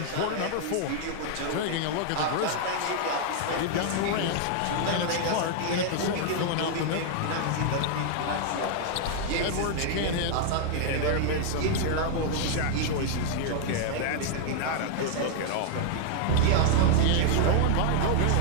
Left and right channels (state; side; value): different; both; correlation 0.00